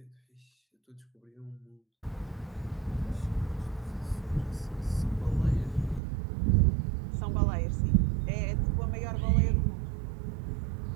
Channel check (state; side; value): drops out; left; at 6.0 s